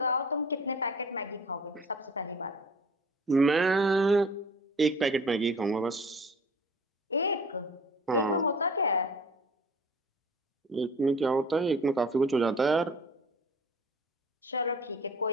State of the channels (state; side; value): normal; both; correlation 0.46